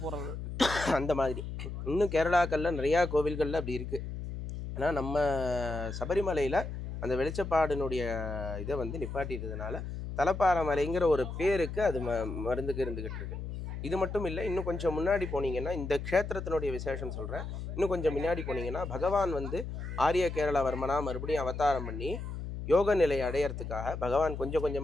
போகிறது அந்த மாதிரி இன்னும் கேரளாக்களில் நிறையா கோவில்களில் அப்படி இருக்குது. ஆனால் நம்ம சபரிமலையில் அந்த வெளிச்சப்பாடினுடைய இதை வந்து நிப்பாட்டிட்டதுனால தலப்பாரமலைங்கிற ஒரு பேருக்கு அது மருந்துக்கு இருந்துக்கிட்டு இருக்கு. இது மட்டும் இல்லை, இன்னும் கொஞ்சம் முன்னாடி போனீங்கன்னா இந்த க்ஷேத்திரத்தினுடைய விசேஷம் சொல்கிறேன். இன்னும் கொஞ்சம் முன்னாடி போனீங்கன்னா பகவான் வந்து ஆரிய கேரளவர்மனா மறுபடியும் அவதாரம் பண்ணி யோக நிலையை அடையிறதுக்காக பகவான் கொஞ்சம்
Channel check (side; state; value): left; noise; hum, 7 dB below the sound